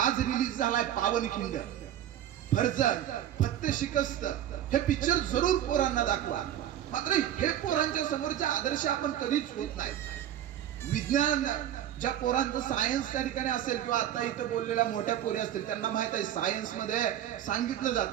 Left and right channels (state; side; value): quieter; left; 11.3 dB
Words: रिलीज झालाय पावनखिंड. फर्जन, फत्ते शिकस्त हे पिक्चर जरूर पोरांना दाखवा. मात्र हे पोरांच्या समोरचे आदर्श आपण कधीच होत नाही. विज्ञान ज्या पोरांचं सायन्स त्या ठिकाणी असेल किंवा आता इथं बोललेल्या मोठ्या पोरी असतील त्यांना माहित आहे सायन्स मध्ये सांगितलं